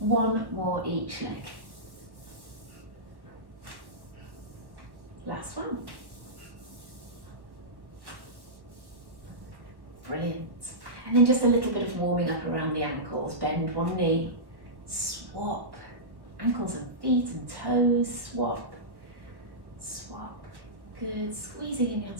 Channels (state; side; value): late; left; 1.1 ms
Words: more each leg. Last one. Brilliant. And then just a little bit of warming up around the ankles. Bend one knee, swap. Ankles and feet and toes, swap, swap. Good, squeezing in your